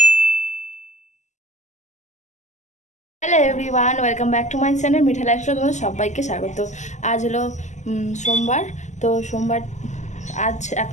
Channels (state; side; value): late; right; 0.34 ms